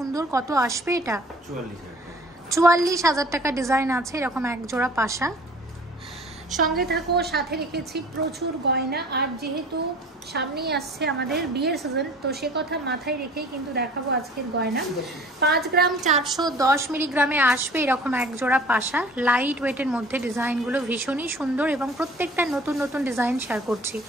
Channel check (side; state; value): both; normal; correlation 0.47